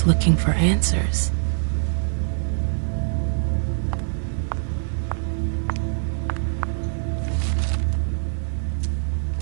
looking for answers.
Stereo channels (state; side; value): silent; left; digital silence